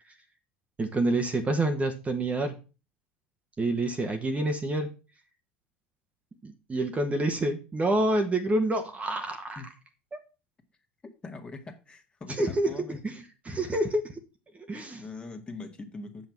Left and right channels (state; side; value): normal; both; correlation 0.70